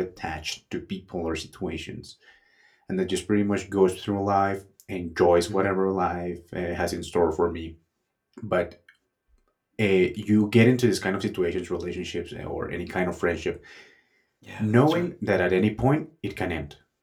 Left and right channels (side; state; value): both; identical; correlation 1.00